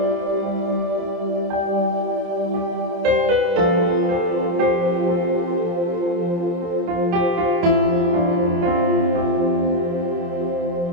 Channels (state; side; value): late; left; 29 ms